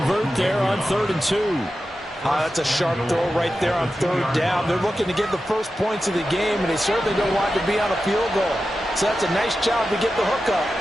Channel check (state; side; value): normal; both; correlation 0.92